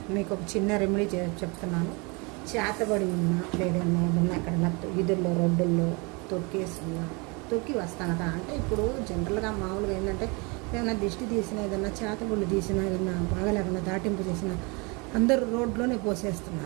మీకు ఒక చిన్న రెమెడీ చెప్తున్నాను. చేతబడి ఉన్నా లేదన్నా ఏదన్నా ఎక్కడన్నా వీధుల్లో రోడ్డుల్లో తొక్కి వస్తానట. అంటే ఇప్పుడు జనరల్గా మామూలుగా ఏంటంటే ఏదైనా దిష్టి తీసినా, ఏదన్నా చేతబడులు తీసినా, ఏదన్నా బాగా లేకుండా దాటింపు చేసినా అందరూ రోడ్లోనే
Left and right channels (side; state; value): left; quieter; 29.4 dB